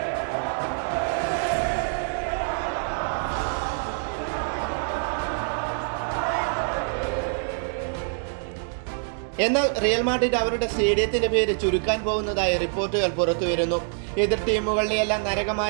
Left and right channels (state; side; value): silent; left; digital silence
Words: എന്നാൽ റിയൽ മാഡ്രിഡ് അവരുടെ സ്റ്റേഡിയത്തിന്റെ പേര് ചുരുക്കാൻ പോകുന്നതായി റിപ്പോർട്ടുകൾ പുറത്തുവരുന്നു. എതിർ ടീമുകളുടെയെല്ലാം